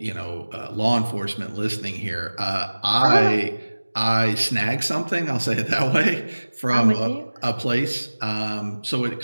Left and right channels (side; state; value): both; inverted; correlation -1.00